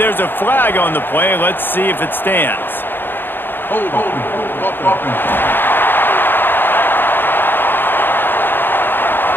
a flag on the play. Let's see if it stands.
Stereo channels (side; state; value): right; late; 0.098 ms